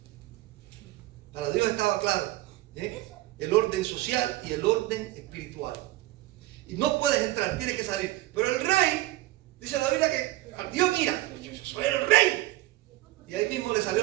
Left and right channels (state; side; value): quieter; left; 16.9 dB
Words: Para Dios estaba claro, el orden social y el orden espiritual. Y no puedes entrar, tienes que salir. Pero el rey, dice la Biblia que Dios mira, yo soy el rey. Y ahí mismo le